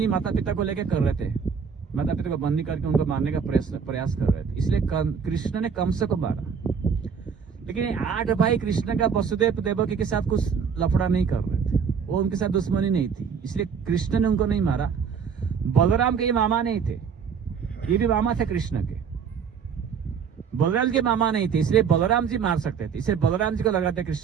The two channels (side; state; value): left; quieter; 6.6 dB